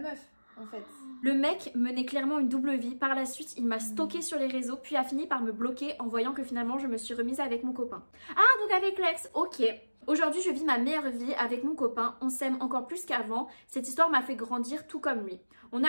en fait. Le mec menait clairement une double vie. Par la suite, il m'a stalké sur les réseaux, puis a fini par me bloquer en voyant que finalement, je me suis remise avec mon copain. Ah, donc avec l'ex, ok. Aujourd'hui, je vis ma meilleure vie avec mon copain. On s'aime encore plus qu'avant. Cette histoire m'a fait grandir tout comme lui. On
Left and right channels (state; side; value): inverted; both; correlation -1.00